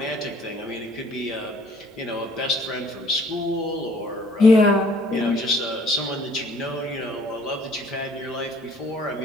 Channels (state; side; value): normal; both; correlation 0.58